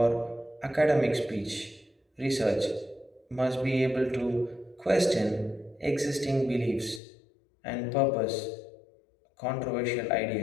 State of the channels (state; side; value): drops out; right; at 7.0 s